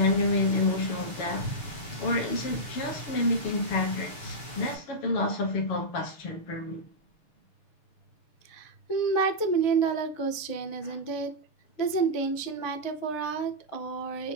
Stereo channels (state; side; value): late; right; 6.6 ms